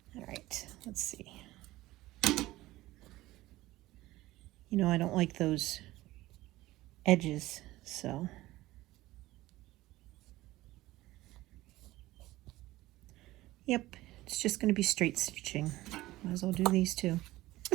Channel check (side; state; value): left; quieter; 17.4 dB